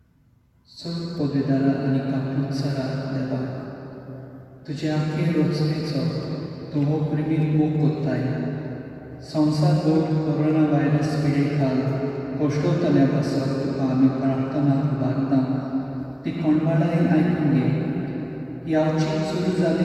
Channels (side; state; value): both; identical; correlation 1.00